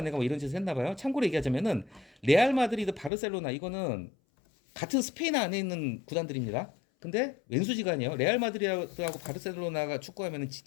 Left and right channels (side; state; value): right; drops out; at 3.1 s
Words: 애가 뭐 이런 짓을 했나 봐요. 참고로 얘기하자면은 레알 마드리드, 바르셀로나 이거는 같은 스페인 안에 있는 구단들입니다. 근데 왼수지간이에요. 레알 마드리드하고 바르셀로나가 축구하면은